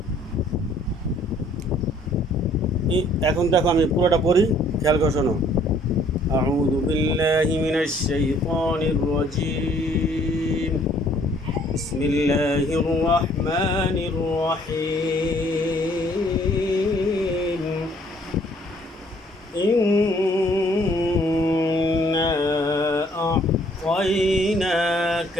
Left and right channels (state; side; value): normal; both; correlation 0.61